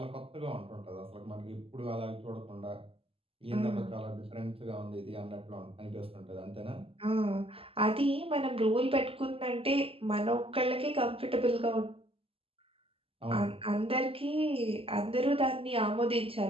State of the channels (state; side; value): late; left; 0.27 ms